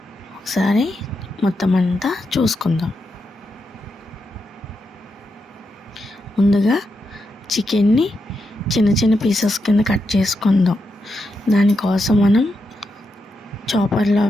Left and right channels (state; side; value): normal; both; correlation 0.85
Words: ఒకసారి మొత్తం అంతా చూసుకుందాం. ముందుగా చికెన్ని చిన్న చిన్న పీసెస్ కింద కట్ చేసుకుందాం. దానికోసం మనం చాపర్లో